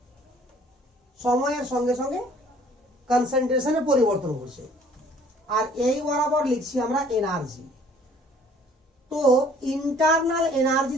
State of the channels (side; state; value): both; normal; correlation 0.56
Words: সময়ের সঙ্গে সঙ্গে কনসেন্ট্রেশনে পরিবর্তন ঘটছে। আর এই বরাবর লিখছি আমরা এনার্জি। তো ইন্টারনাল এনার্জি